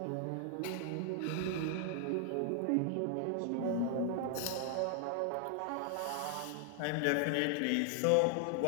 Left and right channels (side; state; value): both; different; correlation 0.00